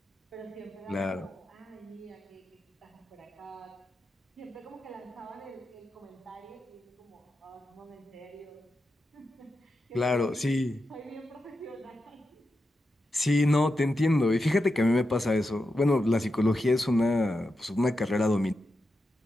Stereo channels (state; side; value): normal; both; correlation 0.88